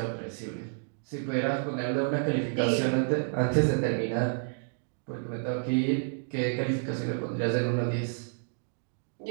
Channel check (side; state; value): left; silent; digital silence